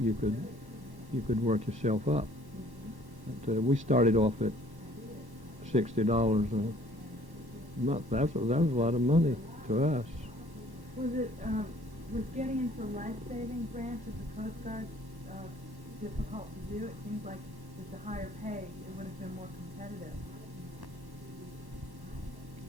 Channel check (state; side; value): late; left; 1.1 ms